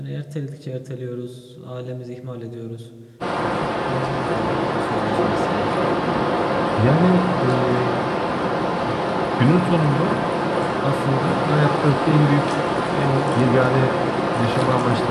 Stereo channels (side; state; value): both; identical; correlation 1.00